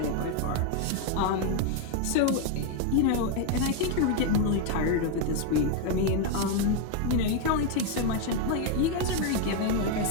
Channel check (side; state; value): both; different; correlation 0.01